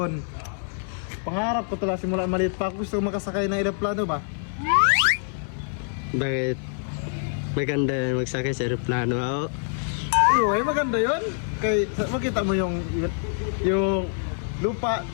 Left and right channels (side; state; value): right; silent; 61 dB below the other